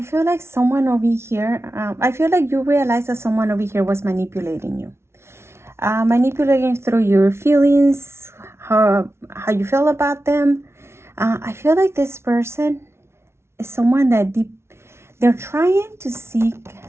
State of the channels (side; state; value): left; late; 0.13 ms